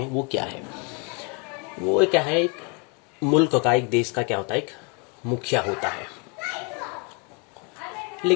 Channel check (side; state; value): right; quieter; 33.6 dB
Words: वो क्या है। वो क्या है, एक मुल्क का, एक देश का क्या होता है, एक मुखिया होता है।